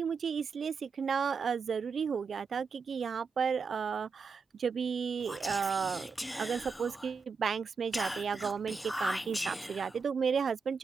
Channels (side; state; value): left; quieter; 5.3 dB